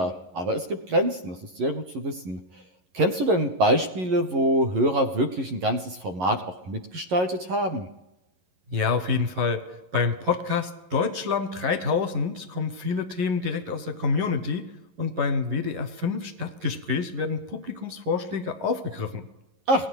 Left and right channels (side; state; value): left; late; 11 ms